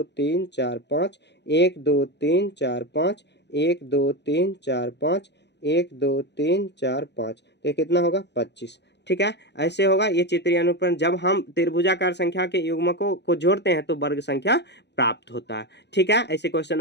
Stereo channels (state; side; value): late; right; 0.50 ms